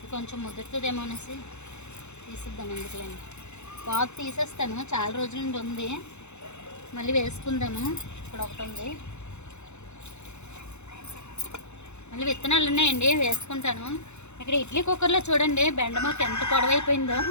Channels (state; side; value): late; right; 0.82 ms